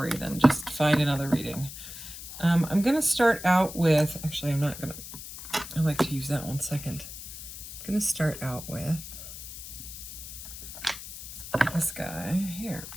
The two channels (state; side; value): noise; left; hiss, 11 dB below the sound